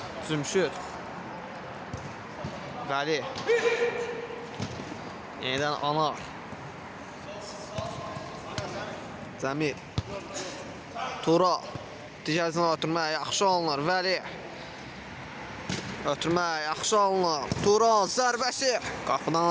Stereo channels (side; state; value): both; identical; correlation 1.00